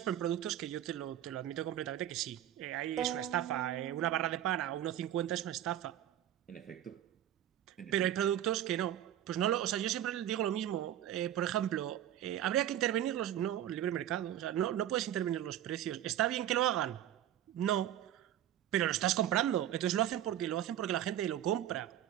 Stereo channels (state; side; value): quieter; left; 11.6 dB